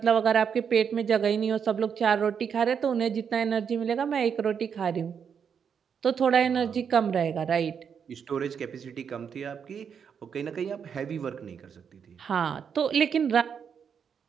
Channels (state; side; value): quieter; left; 7.1 dB